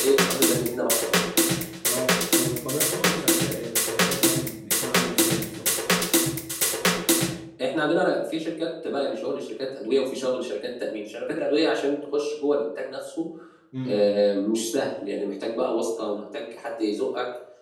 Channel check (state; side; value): identical; both; correlation 1.00